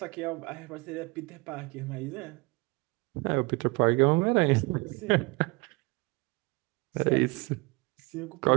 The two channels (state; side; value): quieter; left; 27.0 dB